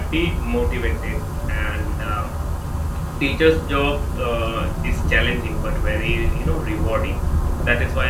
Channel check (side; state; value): both; identical; correlation 1.00